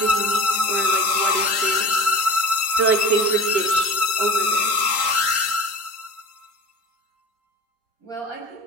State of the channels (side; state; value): left; late; 3.8 ms